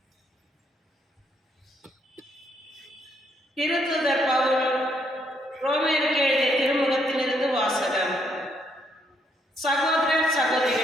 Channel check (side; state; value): both; normal; correlation 0.73